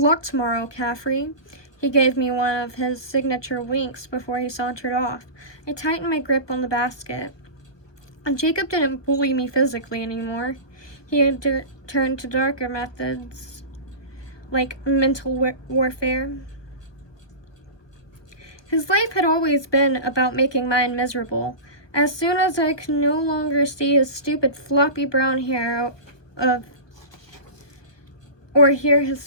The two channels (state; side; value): late; right; 1.2 ms